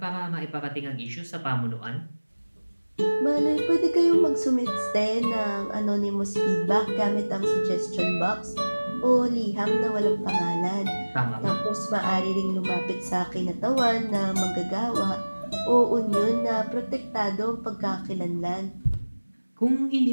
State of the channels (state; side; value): inverted; both; correlation -1.00